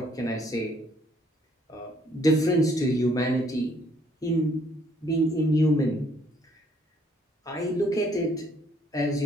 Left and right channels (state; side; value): normal; both; correlation 0.65